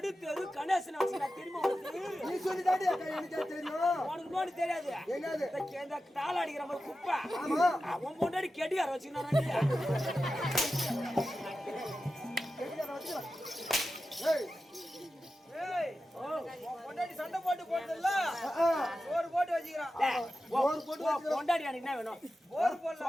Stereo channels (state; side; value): normal; both; correlation 0.92